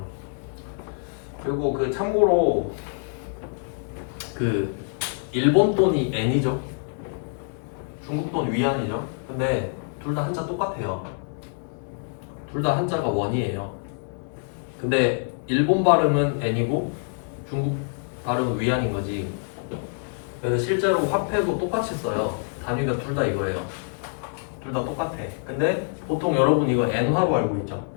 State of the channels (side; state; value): right; silent; digital silence